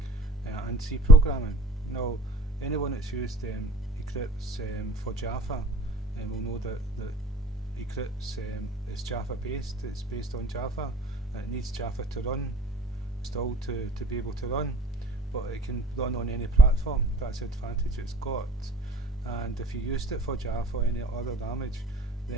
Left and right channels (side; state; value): both; normal; correlation 0.48